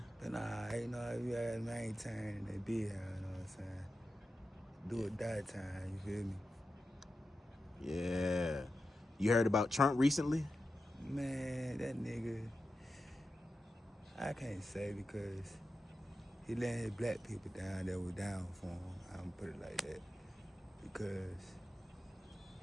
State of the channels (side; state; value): both; normal; correlation 0.91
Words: But nah, you know, you gotta maintain that big hound, you know what I'm saying? Do or die time, you feel me? Yeah. You heard about Trump recently? Man, that nigga, I can't say because he let his black people down that were down for him. I'm gonna put it like that. Because